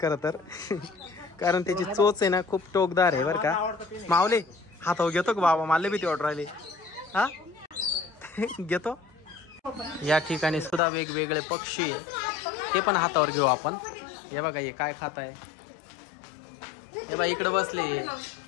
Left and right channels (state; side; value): drops out; right; at 10.8 s